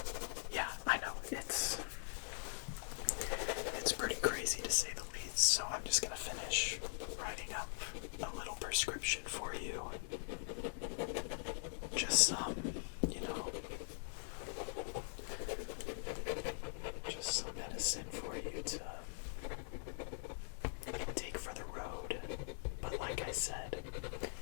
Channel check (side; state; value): right; silent; digital silence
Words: Yeah, I know, it's pretty crazy to say the least. So I'm just gonna finish writing up a little prescription for you. Just some, just some medicine for you to take for the road. But like I said,